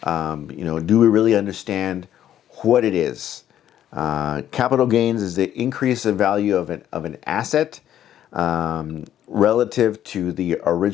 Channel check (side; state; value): right; quieter; 11.1 dB